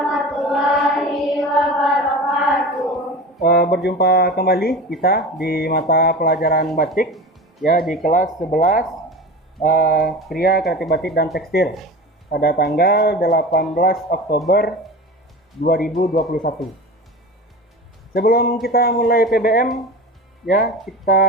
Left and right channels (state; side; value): normal; both; correlation 0.31